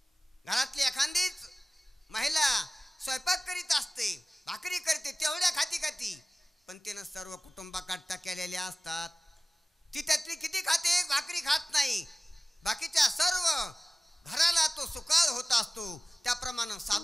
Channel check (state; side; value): normal; both; correlation 0.96